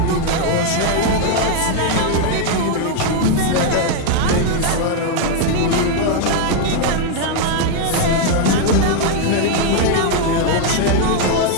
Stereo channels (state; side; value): different; both; correlation 0.00